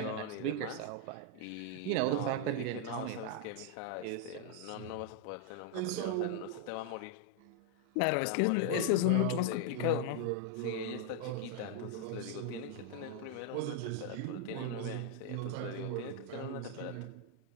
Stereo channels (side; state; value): both; different; correlation 0.00